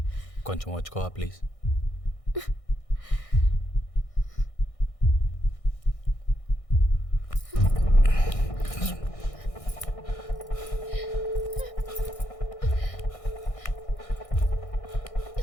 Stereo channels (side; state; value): right; late; 1.6 ms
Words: కొంచెం వచ్చుకోవా ప్లీజ్.